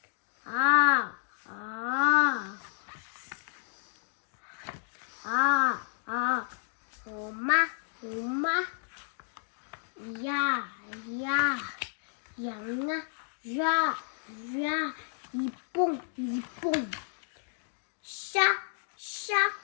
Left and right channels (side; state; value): right; silent; digital silence